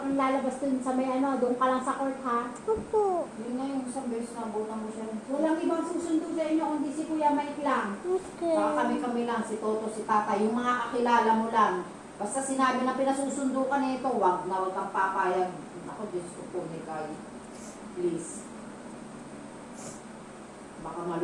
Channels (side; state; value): both; identical; correlation 1.00